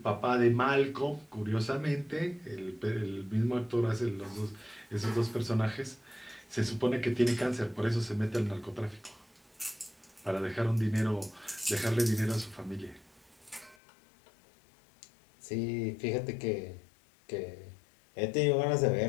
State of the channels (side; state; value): right; drops out; at 13.8 s